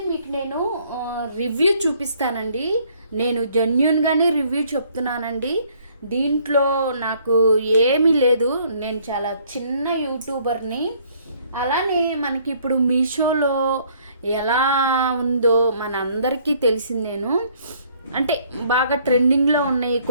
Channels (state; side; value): inverted; both; correlation -0.62